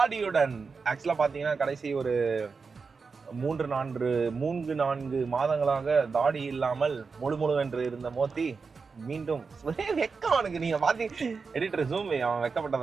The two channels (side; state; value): left; quieter; 4.9 dB